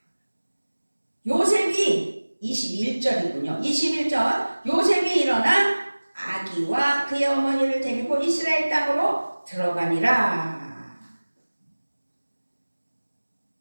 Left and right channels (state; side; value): inverted; both; correlation -1.00